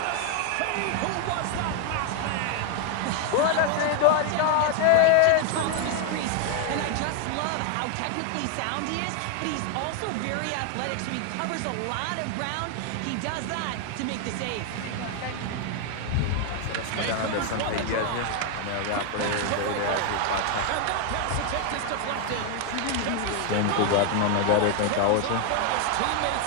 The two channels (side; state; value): both; different; correlation 0.00